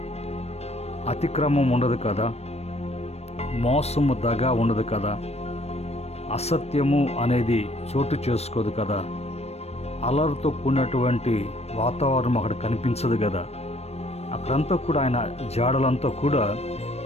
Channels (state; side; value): late; right; 0.31 ms